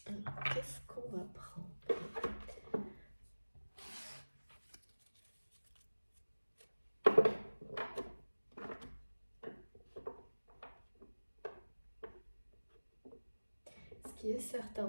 Alors, qu'est-ce qu'on va prendre? Ce qui est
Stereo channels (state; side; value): inverted; both; correlation -1.00